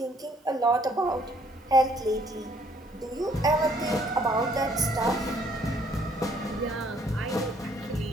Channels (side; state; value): both; normal; correlation 0.64